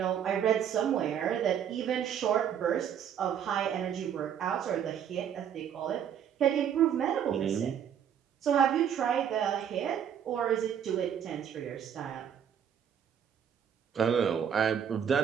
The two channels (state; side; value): quieter; left; 8.8 dB